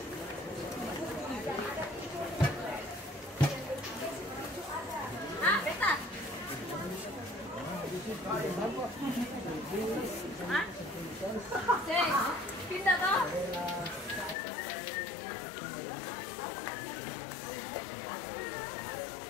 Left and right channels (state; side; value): drops out; right; at 14.4 s